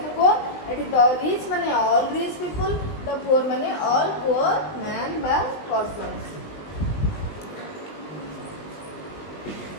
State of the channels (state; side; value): late; right; 19 ms